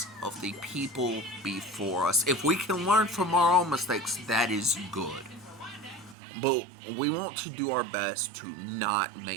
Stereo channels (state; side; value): drops out; left; at 6.2 s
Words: of the people before us. If we can learn from our own mistakes, that is good. But we want to do our best to not